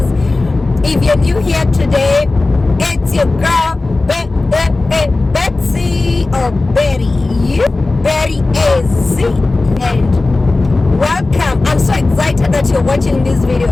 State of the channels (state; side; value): quieter; right; 3.3 dB